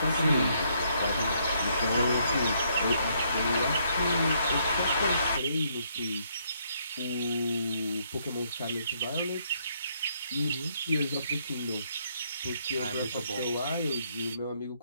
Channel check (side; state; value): both; inverted; correlation -0.71